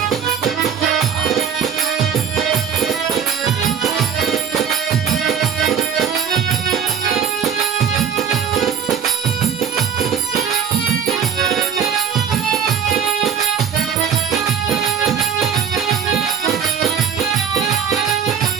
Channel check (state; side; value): quieter; left; 7.6 dB